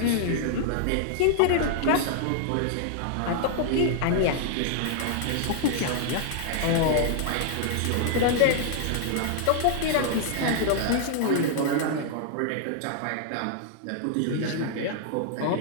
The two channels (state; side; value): different; both; correlation -0.01